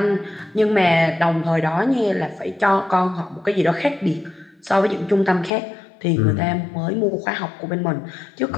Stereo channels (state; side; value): drops out; right; at 5.5 s